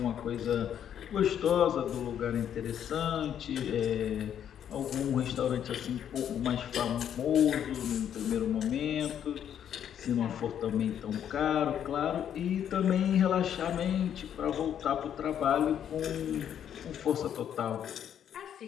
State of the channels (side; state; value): right; quieter; 9.4 dB